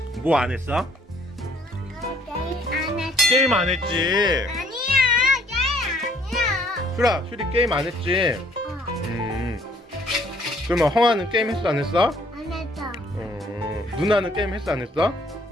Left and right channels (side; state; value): both; normal; correlation 0.61